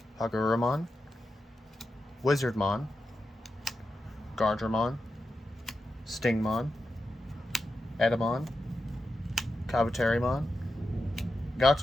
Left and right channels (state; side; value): normal; both; correlation 0.89